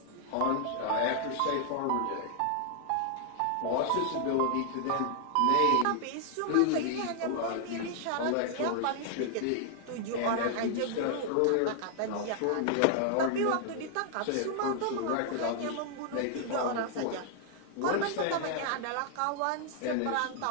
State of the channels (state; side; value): different; both; correlation 0.00